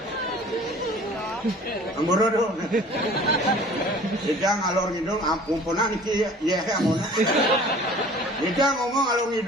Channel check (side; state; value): both; normal; correlation 0.48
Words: Amborodo. Dia ngalor ngidul, ampunan iki ya amona. Dia ngomong ngalor